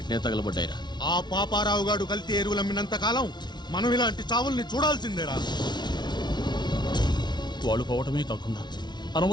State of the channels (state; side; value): late; right; 0.20 ms